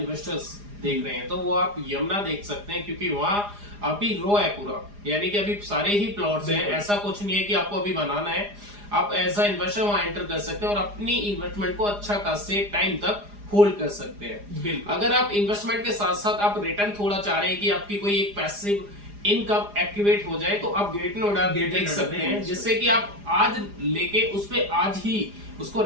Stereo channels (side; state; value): left; late; 4.9 ms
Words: देख रहे हैं, तो वो आप यमुना देख सकते हैं, क्योंकि वहाँ अभी रो है पूरा, यानी कि अभी सारे ही प्लॉट्स हैं, ऐसा कुछ नहीं है कि आपको अभी बनाना है। आप एज अ इन्वेस्टर वहां एंटर कर सकते हैं और अपनी इन्वेस्टमेंट को अच्छा खासे टाइम तक होल्ड कर सकते हैं। अगर आप इन्वेस्टमेंट के साथ साथ आप रिटर्न थोड़ा चाह रहे हैं कि आपकी कोई एक पैसिव इनकम एक्टिवेट हो जाए, तो आप ग्रेटर नोएडा देख सकते हैं, जिससे कि आप आज लेके उस पे आज ही उसको